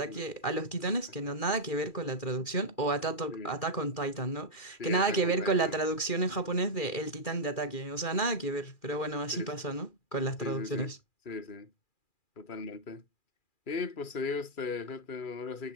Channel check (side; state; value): right; late; 2.4 ms